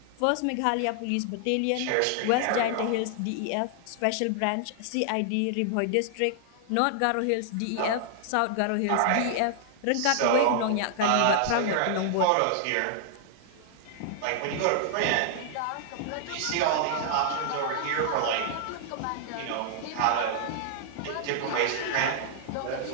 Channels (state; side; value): different; both; correlation -0.01